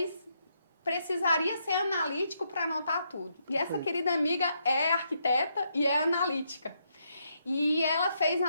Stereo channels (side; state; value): both; inverted; correlation -0.77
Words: precisaria ser analítico para anotar tudo. E essa querida amiga é arquiteta e é analítica. E ela fez a